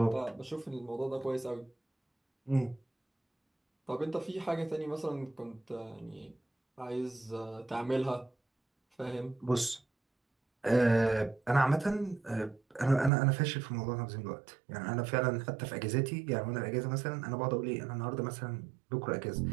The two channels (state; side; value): drops out; left; at 13.1 s